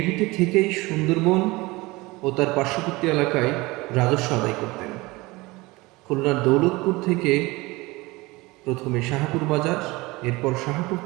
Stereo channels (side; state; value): left; quieter; 22.1 dB